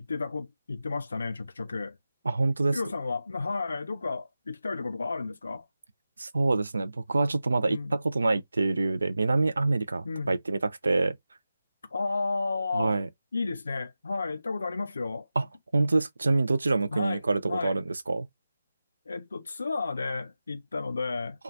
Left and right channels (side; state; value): both; inverted; correlation -0.93